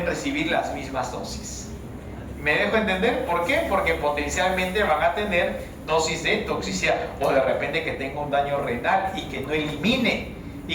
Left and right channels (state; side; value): identical; both; correlation 1.00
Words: recibir las mismas dosis. ¿Me dejo entender? ¿Por qué? Porque potencialmente van a tener dosis de toxicidad, o de repente que tenga un daño renal y que no elimine,